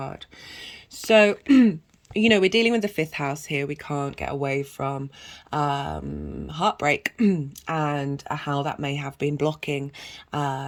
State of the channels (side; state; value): both; identical; correlation 1.00